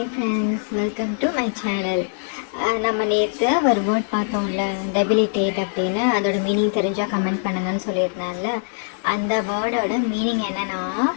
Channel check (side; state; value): right; silent; 61 dB below the other